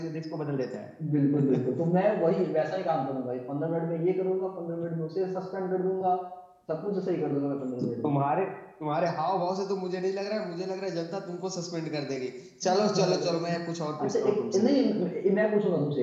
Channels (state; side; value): identical; both; correlation 1.00